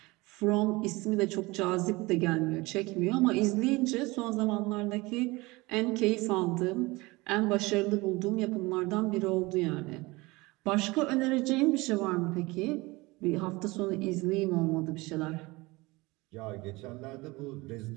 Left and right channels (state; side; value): quieter; left; 22.7 dB